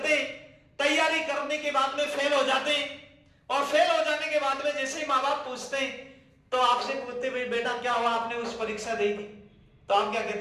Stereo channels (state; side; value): identical; both; correlation 1.00